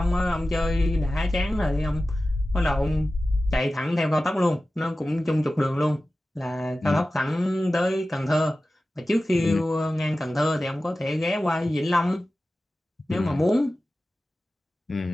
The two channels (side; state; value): both; normal; correlation 0.95